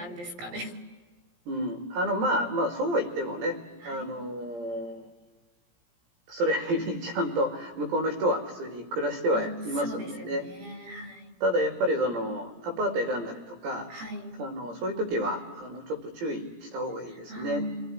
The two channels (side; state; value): left; late; 17 ms